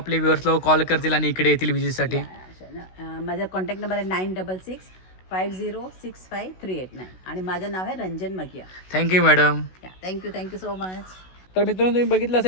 व्ह्युअर्स लोक कॉल करतील आणि इकडे येतील विजिटसाठी? माझा कॉन्टॅक्ट नंबर आहे 9665065389 आणि माझं नाव आहे Ranjan Magiya. Thank you madam. Thank you so much. तर मित्रांनो तुम्ही बघितलं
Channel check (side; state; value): right; late; 16 ms